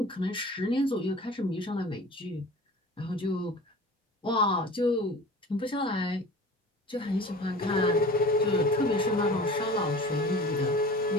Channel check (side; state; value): both; normal; correlation 0.40